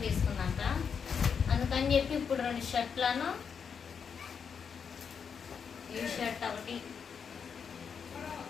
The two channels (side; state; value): right; quieter; 6.6 dB